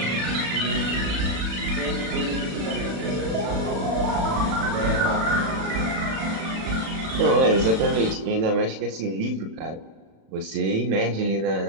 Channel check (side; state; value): left; late; 36 ms